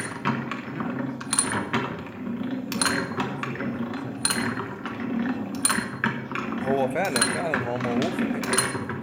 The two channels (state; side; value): identical; both; correlation 1.00